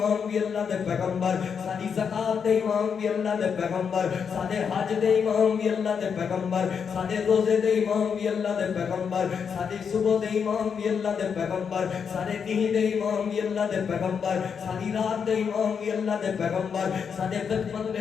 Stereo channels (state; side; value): quieter; right; 6.7 dB